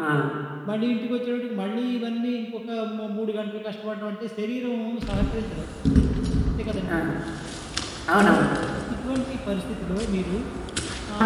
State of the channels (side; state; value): both; identical; correlation 1.00